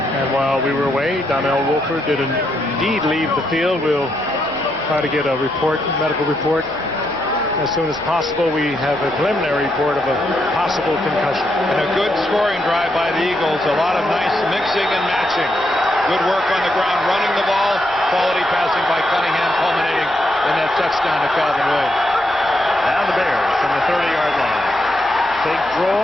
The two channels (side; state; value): both; normal; correlation 0.80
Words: And while we were away, Donnell Wolford did indeed leave the field. We'll try to get a report, medical report, as soon as possible. We have a preliminary report of a possible concussion. And a good scoring drive by the Eagles. A lot of nice mixing and matching. Good work on the ground, running the ball. Quality passing by Cunningham, culminating in that touchdown to Calvin Williams. Now the Bears from the 30-yard line. Big